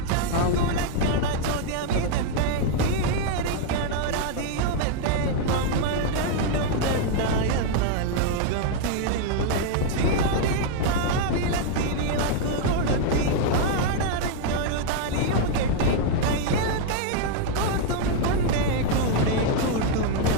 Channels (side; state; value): both; different; correlation 0.00